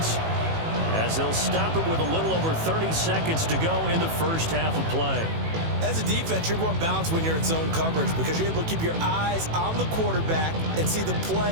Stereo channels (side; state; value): left; late; 18 ms